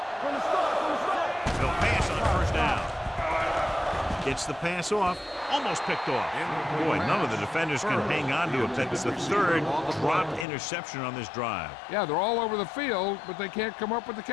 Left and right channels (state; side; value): drops out; right; at 10.5 s